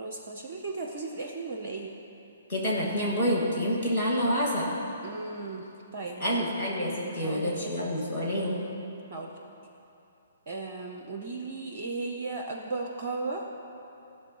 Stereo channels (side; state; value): both; inverted; correlation -0.57